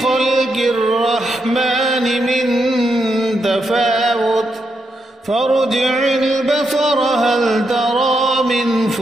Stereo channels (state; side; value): normal; both; correlation 0.82